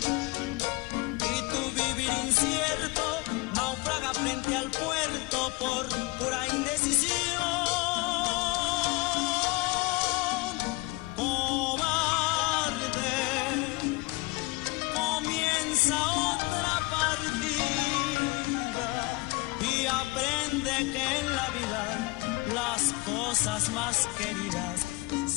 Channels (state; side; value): quieter; right; 22.9 dB